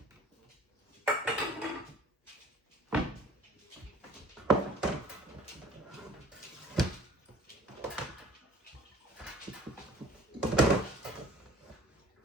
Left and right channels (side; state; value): both; normal; correlation 0.49